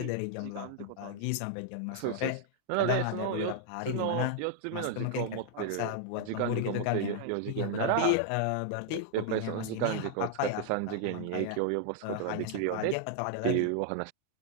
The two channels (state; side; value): different; both; correlation 0.00